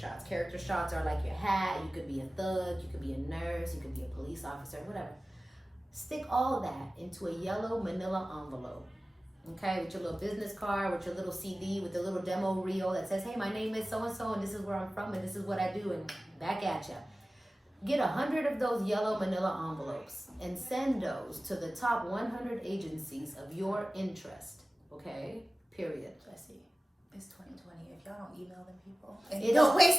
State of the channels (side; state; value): both; normal; correlation 0.97